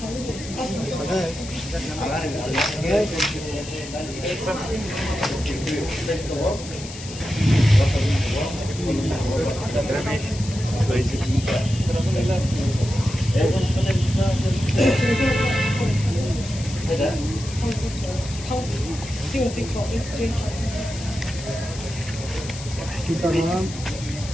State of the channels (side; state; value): left; noise; hiss, 13 dB below the sound